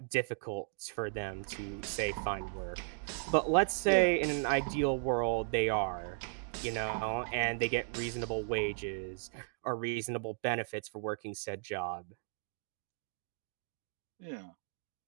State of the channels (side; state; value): left; silent; 54 dB below the other